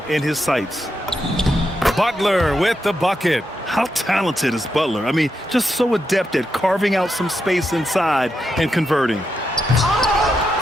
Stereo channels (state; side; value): normal; both; correlation 0.84